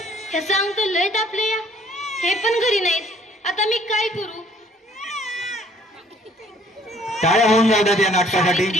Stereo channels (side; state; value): both; normal; correlation 0.59